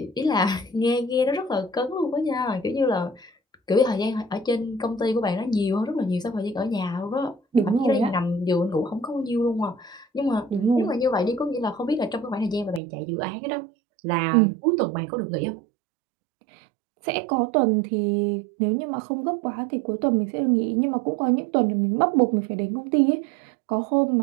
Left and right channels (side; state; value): left; drops out; at 12.8 s